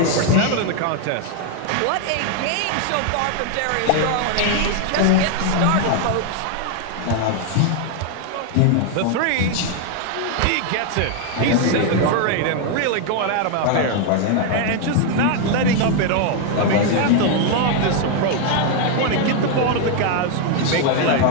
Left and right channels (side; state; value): both; different; correlation 0.00